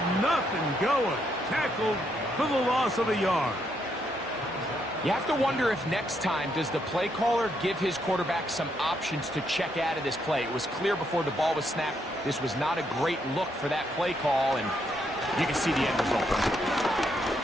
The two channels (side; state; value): both; normal; correlation 0.76